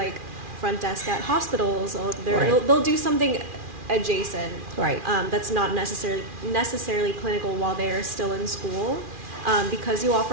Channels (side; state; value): left; late; 2.4 ms